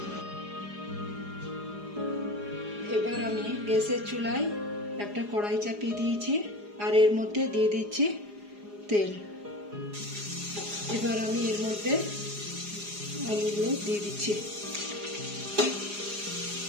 এবার আমি গ্যাসের চুলায় একটা কড়াই চাপিয়ে দিয়েছি আর এর মধ্যে দিয়ে দিচ্ছি তেল। এবার আমি এর মধ্যে আলুগুলো দিয়ে দিচ্ছি।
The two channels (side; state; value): left; late; 4.9 ms